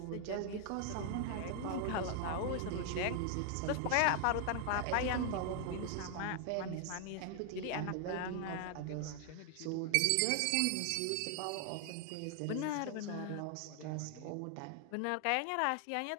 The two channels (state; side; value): different; both; correlation 0.00